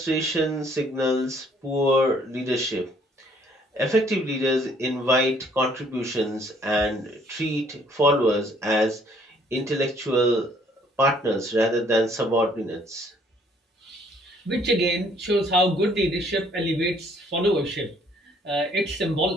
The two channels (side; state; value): both; normal; correlation 0.63